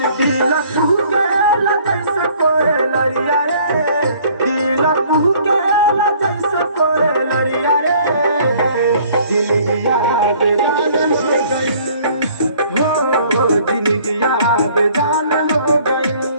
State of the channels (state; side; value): inverted; both; correlation -0.57